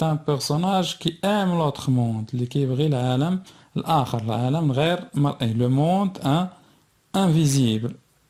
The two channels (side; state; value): both; identical; correlation 1.00